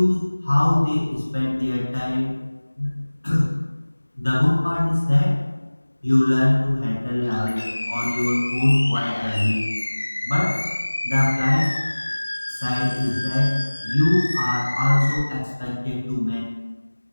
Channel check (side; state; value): both; inverted; correlation -1.00